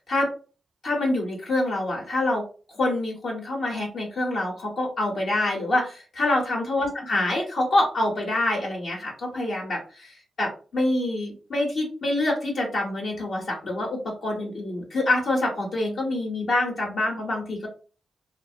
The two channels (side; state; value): both; normal; correlation 0.86